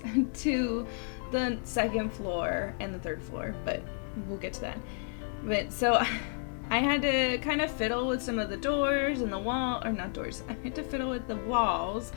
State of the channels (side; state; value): right; silent; 57 dB below the other